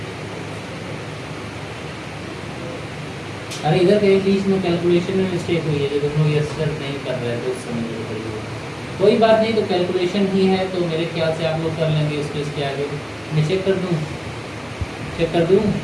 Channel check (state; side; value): identical; both; correlation 1.00